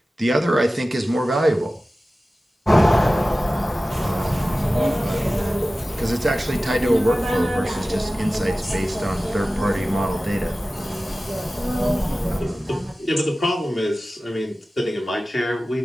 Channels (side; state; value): both; normal; correlation 0.96